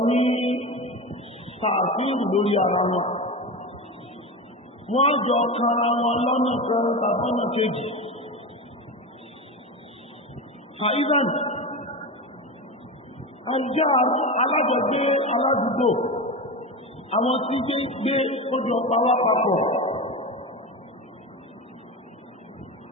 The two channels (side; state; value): both; normal; correlation 0.23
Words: ní tààfíìrù lórí ara wọn wọ́n jọ kanra wọn lọ́nà kan tàbọ́nà kejì àìsàn àìjá alájọgbé aládùúgbò àwọn tí gbé ojú ọpa wá papọ̀